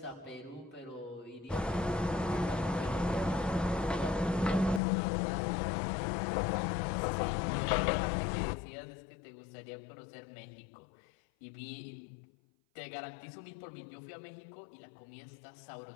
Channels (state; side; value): drops out; right; at 4.8 s